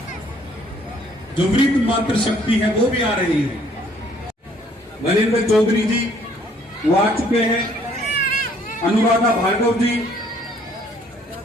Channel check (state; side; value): normal; both; correlation 0.62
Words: जो वृद्ध मातृशक्ति है वो भी आ रही है। नरेंद्र चौधरी जी वो आ चुके हैं, अनुराधा भार्गव जी,